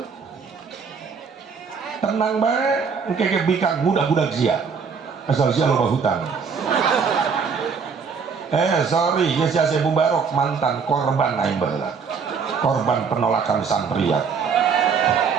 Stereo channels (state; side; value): quieter; left; 5.8 dB